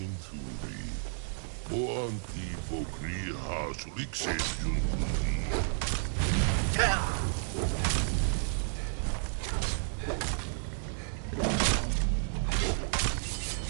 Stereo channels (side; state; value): left; silent; digital silence